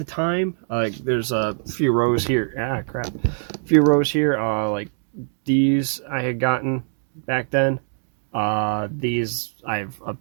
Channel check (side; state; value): left; silent; 63 dB below the other